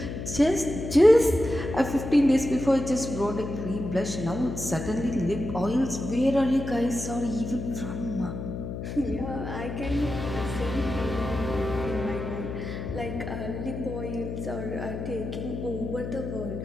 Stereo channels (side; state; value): left; noise; hum, 6 dB below the sound